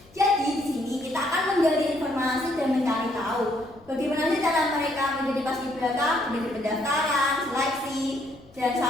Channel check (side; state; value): left; noise; rumble, 27 dB below the sound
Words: Jadi di sini kita akan menggali informasi dan mencari tahu bagaimana sih cara mereka menjadi paskibraka, menjadi pendaftaran, seleksi, dan